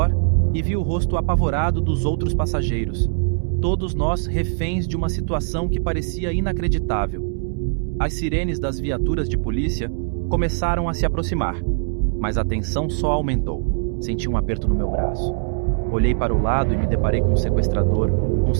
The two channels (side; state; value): left; silent; 65 dB below the other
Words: e vi o rosto apavorado dos outros passageiros. Todos nós reféns de uma situação que parecia inacreditável. As sirenes das viaturas de polícia começaram a se aproximar, mas a tensão só aumentou. Senti um aperto no meu braço. Olhei para o lado e me deparei com o sequestrador, com